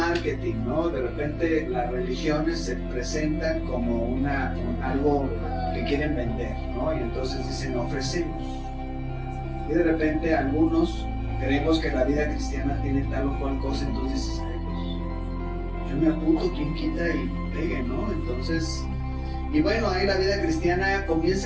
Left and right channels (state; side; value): identical; both; correlation 1.00